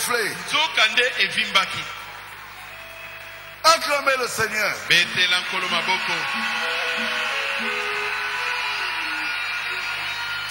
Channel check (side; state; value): both; identical; correlation 1.00